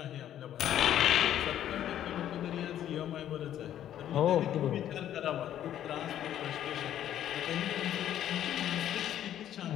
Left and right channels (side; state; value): right; quieter; 11.2 dB